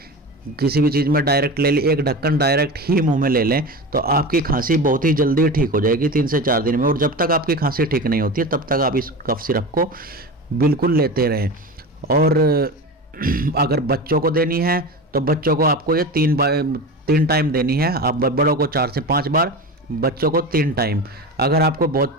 किसी भी चीज़ में डायरेक्ट ले ली, एक ढक्कन डायरेक्ट ही मुंह में ले लें तो आपकी खांसी बहुत ही जल्दी ठीक हो जाएगी 3 से 4 दिन में। और जब तक आपकी खांसी ठीक नहीं होती है तब तक आप इस कफ सिरप को बिल्कुल लेते रहें। और अगर बच्चों को देनी है तो बच्चों को आपको ये 3 टाइम देनी है। आप बड़ों को 4 से 5 बार, बच्चों को 3 टाइम। अगर आपको बहुत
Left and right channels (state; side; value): normal; both; correlation 0.27